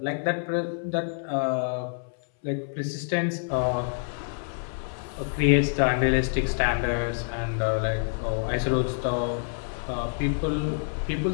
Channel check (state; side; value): silent; right; 58 dB below the other